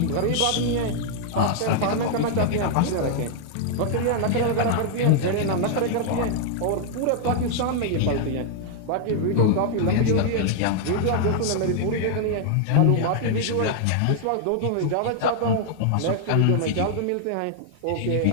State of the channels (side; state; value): both; different; correlation 0.00